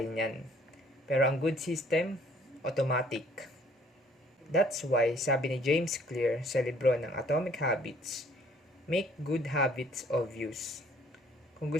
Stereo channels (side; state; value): both; normal; correlation 0.59